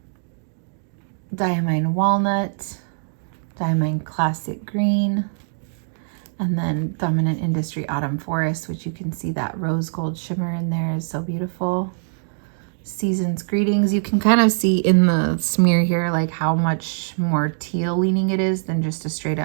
Diamine Walnut, Diamine Classic Green, and then Dominant Industry Autumn Forest, which you can see that rose gold shimmer in there is so beautiful. Season's Greetings, you can kind of see in the smear here like how much more teal leaning it is than just a straight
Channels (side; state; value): left; silent; digital silence